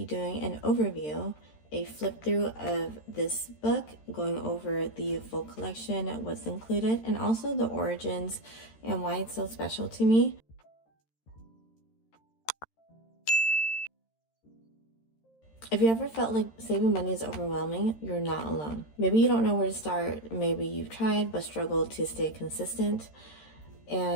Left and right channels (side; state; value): right; late; 13 ms